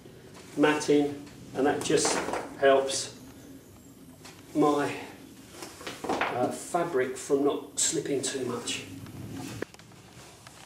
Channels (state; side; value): identical; both; correlation 1.00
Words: matting, and that just helps my fabric from not slipping too much.